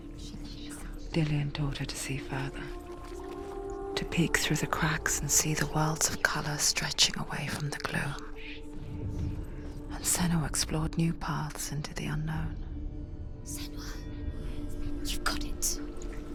Dillian taught her to see further. To peek through the cracks and see the worlds of colour stretching away from the gloom. And Senua explored new paths into the unknown. Senua. You've got it.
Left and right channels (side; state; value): both; identical; correlation 1.00